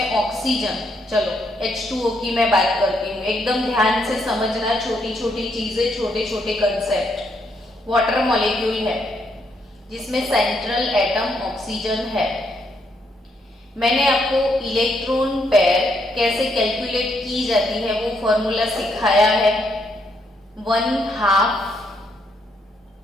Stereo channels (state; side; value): normal; both; correlation 0.75